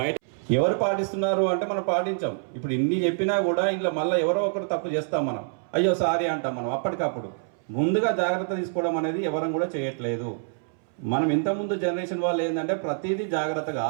ఎవరు పాటిస్తున్నారు అంటే మనం పాటించాం. ఇప్పుడు ఇన్ని చెప్పినా కూడా ఇంట్లో మళ్ళీ ఎవరో ఒకరు తప్పు చేస్తాం, మనం అయ్యో సారీ అంటాం. మనం అప్పటికప్పుడు ముందుగా జాగ్రత్త తీసుకోవడం అనేది ఎవరం కూడా చేయట్లేదు. మనం ఇంతకుముందు జనరేషన్ వాళ్ళు ఏంటంటే ప్రతిదీ జాగ్రత్తగా,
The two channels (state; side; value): silent; left; 61 dB below the other